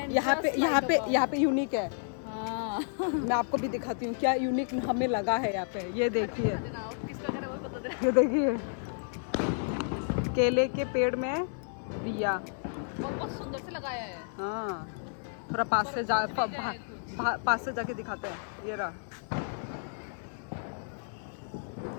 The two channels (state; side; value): silent; right; digital silence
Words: पे यूनिक है। हाँ। मैं आपको भी दिखाती हूँ क्या यूनिक हमें लगा है यहाँ पे। ये देखिए, ये देखिए केले के पेड़ में दिया। बहुत सुंदर से लगाया है। हाँ, थोड़ा पास से जाके दिखाते हैं। ये रहा